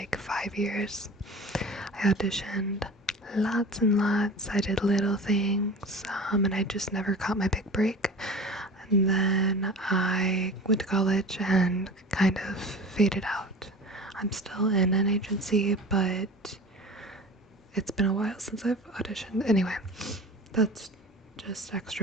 5 years. I auditioned lots and lots. I did little things, and I just never caught my big break. And then I went to college and kind of faded out. I'm still in an agency, but it's been a while since I've auditioned. Anyway, that's just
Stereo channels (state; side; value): normal; both; correlation 0.37